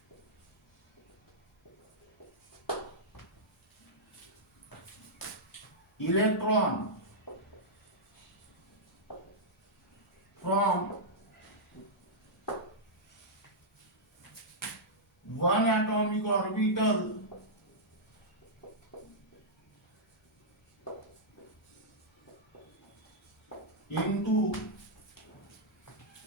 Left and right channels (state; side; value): normal; both; correlation -0.10